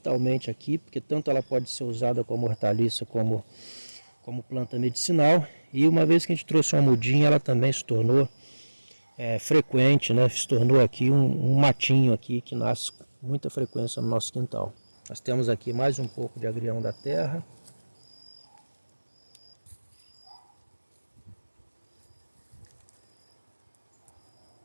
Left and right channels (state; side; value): inverted; both; correlation -1.00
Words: aqui, porque tanto ela pode ser usada como hortaliça, como planta medicinal. E uma vez que a gente trouxe uma mudinha, ela também se tornou frequente, né? Se tornou aqui um matinho aqui que nasce com muita frequência no nosso quintal. Nós temos aqui mais um pouco de agrião da terra.